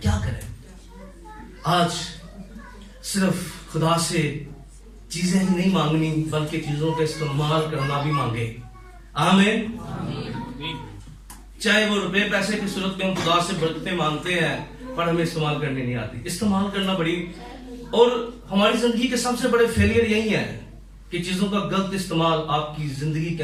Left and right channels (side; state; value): both; identical; correlation 1.00